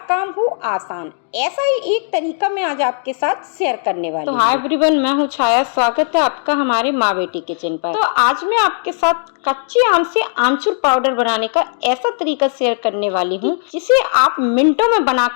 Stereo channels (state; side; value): silent; right; digital silence